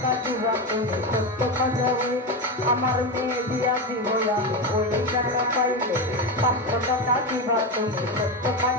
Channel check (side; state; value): both; normal; correlation 0.15